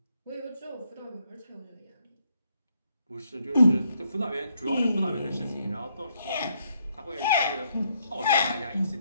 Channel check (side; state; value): both; inverted; correlation -0.73